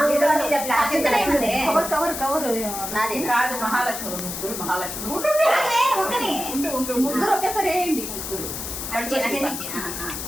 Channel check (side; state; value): left; noise; hiss, 6 dB below the sound